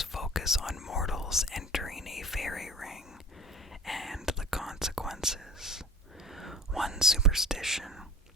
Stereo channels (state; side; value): normal; both; correlation 0.42